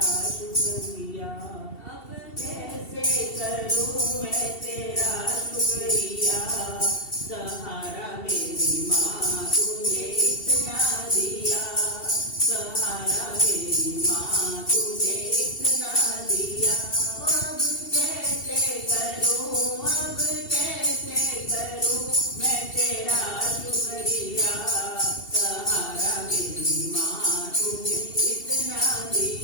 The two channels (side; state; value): right; late; 2.7 ms